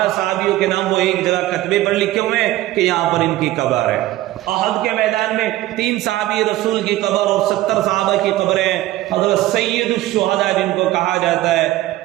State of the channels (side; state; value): left; quieter; 15.9 dB